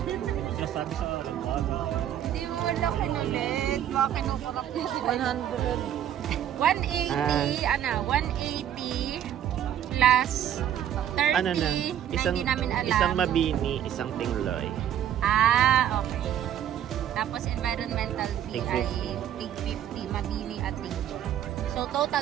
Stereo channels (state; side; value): quieter; left; 10.5 dB